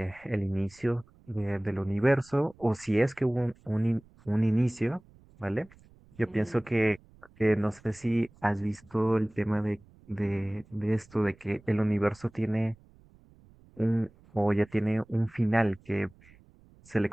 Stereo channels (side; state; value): right; noise; rumble, 27 dB below the sound